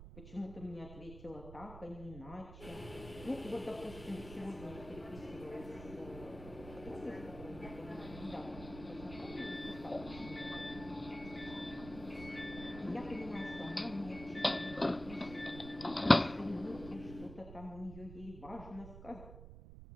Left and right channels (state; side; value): noise; right; rumble, 12 dB below the sound